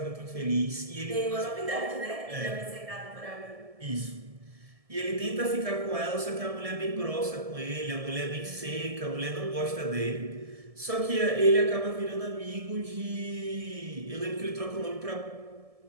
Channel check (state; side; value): late; left; 1.7 ms